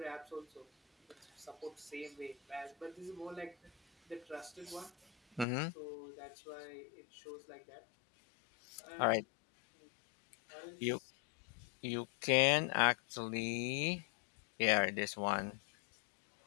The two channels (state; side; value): drops out; right; at 5.5 s